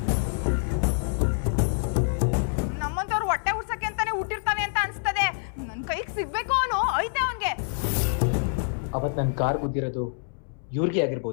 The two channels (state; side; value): silent; right; 61 dB below the other